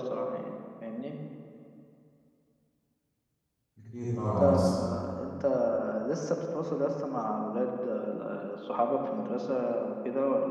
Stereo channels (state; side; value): identical; both; correlation 1.00